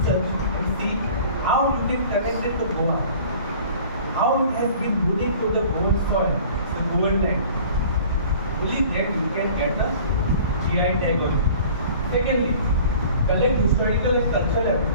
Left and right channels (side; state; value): both; inverted; correlation -0.47